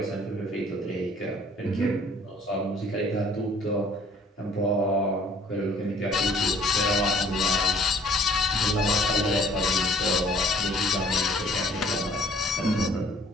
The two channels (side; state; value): both; normal; correlation 0.56